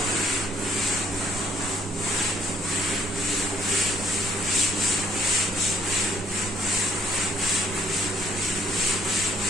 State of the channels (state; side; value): normal; both; correlation 0.67